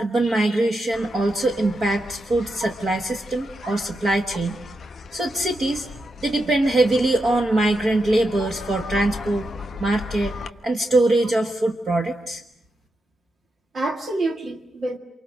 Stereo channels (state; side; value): normal; both; correlation 0.86